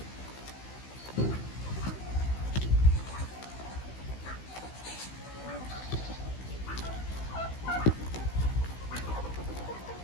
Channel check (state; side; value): late; right; 16 ms